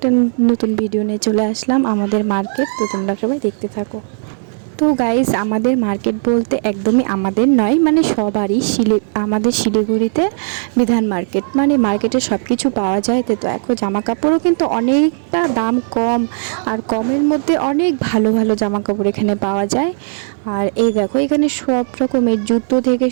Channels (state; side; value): silent; left; 65 dB below the other